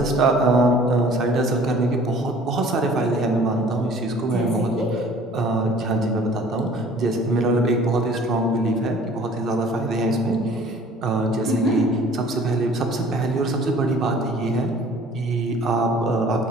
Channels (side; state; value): both; normal; correlation 0.51